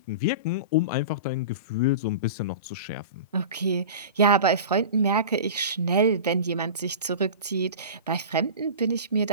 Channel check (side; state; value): both; inverted; correlation -0.33